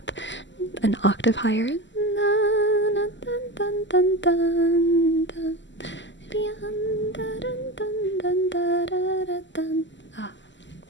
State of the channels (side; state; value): right; late; 0.54 ms